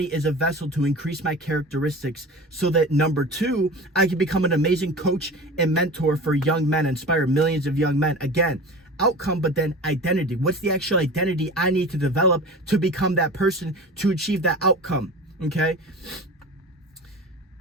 as a vessel to increase my characteristics so that, number 2, I can become an amazing coach and mentor for young men, inspire millions of young men. Again, outcome, but then identity. What's the actual identity I need to develop to become that person, to achieve that outcome, okay?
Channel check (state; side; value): normal; both; correlation 0.35